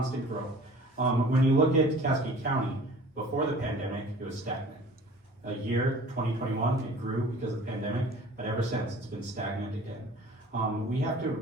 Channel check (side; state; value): both; normal; correlation 0.46